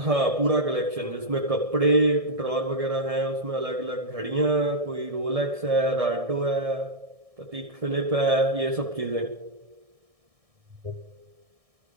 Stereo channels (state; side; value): late; left; 1.6 ms